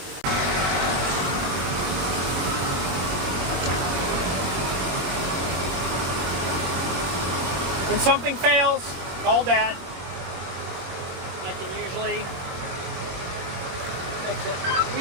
When something fails, call Dad. I can usually fix it.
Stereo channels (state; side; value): late; left; 22 ms